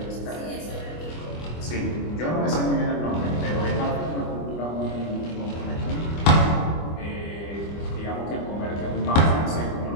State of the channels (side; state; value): right; late; 25 ms